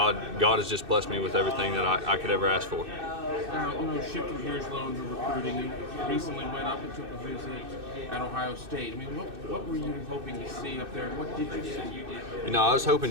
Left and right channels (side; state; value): left; late; 2.6 ms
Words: has just blessed me with everything that I could ever ask for. Now, shifting gears a little into recruiting, you recently went up and took a visit at Ohio State. I mean, what were you hoping to see up there, and what did you see? I was